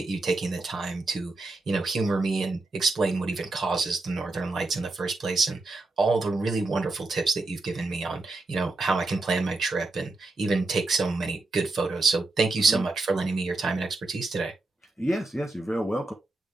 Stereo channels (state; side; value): quieter; left; 3.2 dB